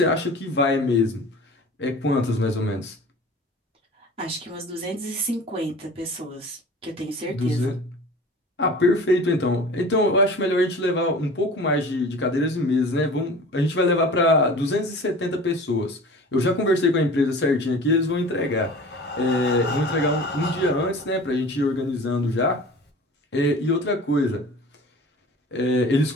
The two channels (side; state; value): both; normal; correlation 0.40